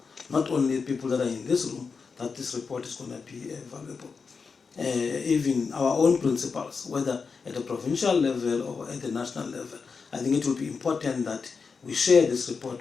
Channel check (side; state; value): right; quieter; 5.2 dB